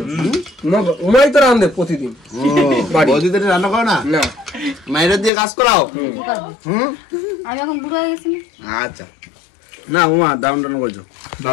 উমাই তো রান্ধে প্রতিদিন। বৌদিদের রান্না করো না? না মায়ের দিয়ে কাজ করাও। আমি এখন বুড়ো হয়ে গেছি। আচ্ছা না উমা দারুণ রান্না করেছো।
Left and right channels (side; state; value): right; drops out; at 5.3 s